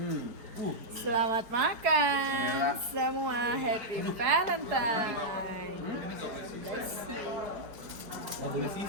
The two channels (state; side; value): late; left; 4.9 ms